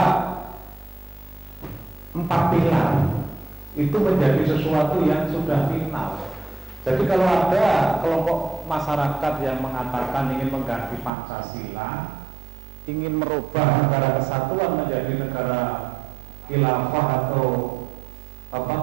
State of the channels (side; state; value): left; drops out; at 11.1 s